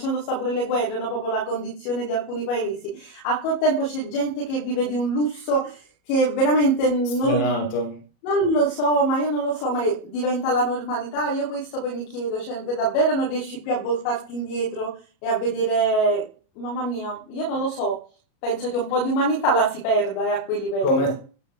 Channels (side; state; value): right; late; 37 ms